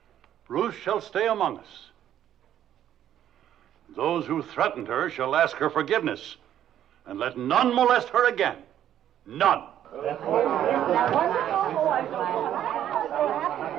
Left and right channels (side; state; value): left; quieter; 11.0 dB